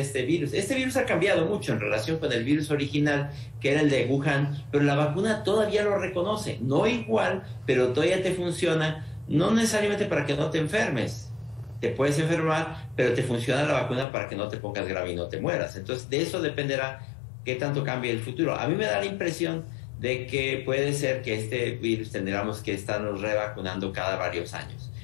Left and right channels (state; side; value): drops out; right; at 14.1 s